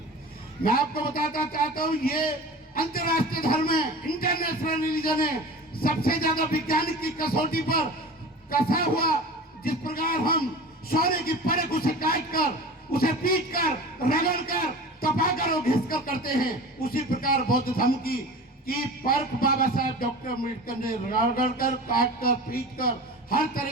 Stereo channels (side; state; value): both; normal; correlation 0.36